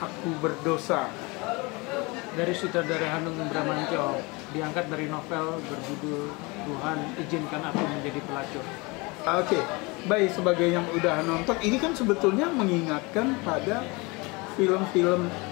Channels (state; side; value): quieter; right; 26.2 dB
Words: berdosa. Dari sutradara Hanung Bramantyo, diangkat dari novel berjudul Tuhan izinkan aku menjadi pelacur. Oke, baik, sebagai yang udah nonton, ini kan sebetulnya mengingatkan pada film-film